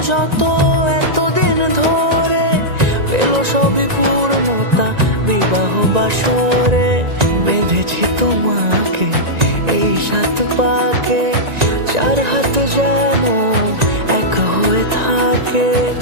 যত এতদিন ধরে, পেল সবই পূর্ণতা বিবাহ বাসরে। বেঁধেছি তোমাকে এই 7 পাকে, 4 হাত যেন এক হয়ে থাকে।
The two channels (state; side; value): late; left; 1.9 ms